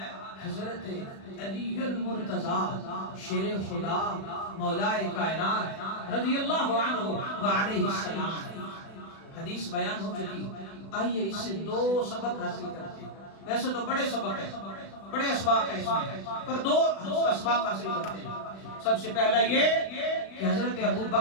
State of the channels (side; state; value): right; late; 36 ms